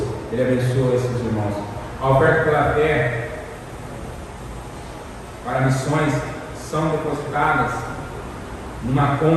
Ele abençoa esses irmãos. A oferta pela fé para missões são depositadas numa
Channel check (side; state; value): both; identical; correlation 1.00